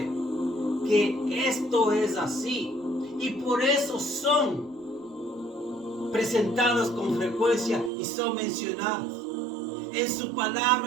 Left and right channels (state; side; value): drops out; left; at 7.9 s